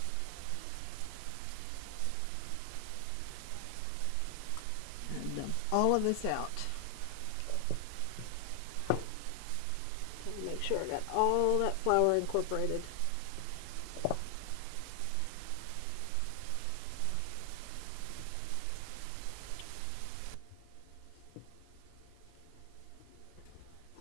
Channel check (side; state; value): both; different; correlation 0.00